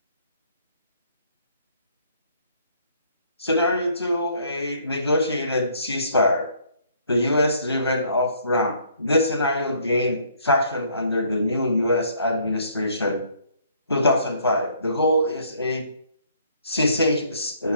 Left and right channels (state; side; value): inverted; both; correlation -0.63